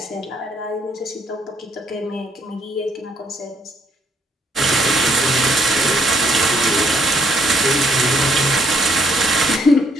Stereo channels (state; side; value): normal; both; correlation 0.69